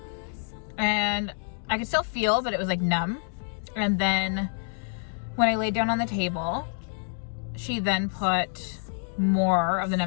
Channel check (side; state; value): right; silent; 60 dB below the other